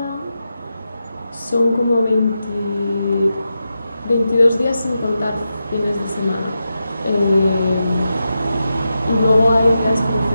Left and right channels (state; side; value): inverted; both; correlation -0.89